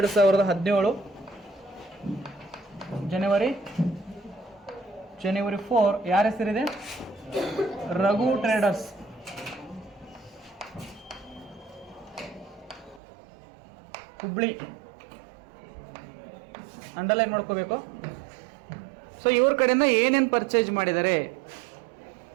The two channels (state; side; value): drops out; left; at 13.0 s